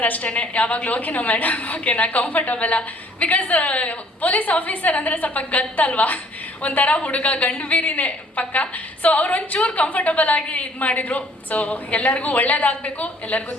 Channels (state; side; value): normal; both; correlation 0.59